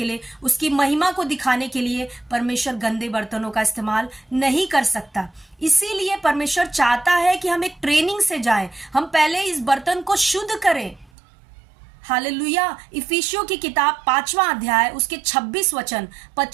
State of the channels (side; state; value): left; drops out; at 11.1 s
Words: लिए, उसकी महिमा को दिखाने के लिए परमेश्वर गंदे बर्तनों का इस्तेमाल नहीं कर सकता। इसीलिए परमेश्वर चाहता है कि हम एक ट्रेनिंग से जाएं, हम पहले इस बर्तन को शुद्ध करें। हालेलुया। इफिसियों की किताब 5वां अध्याय उसके 26 वचन,